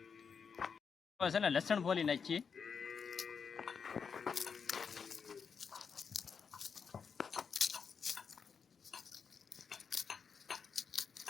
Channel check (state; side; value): quieter; right; 6.1 dB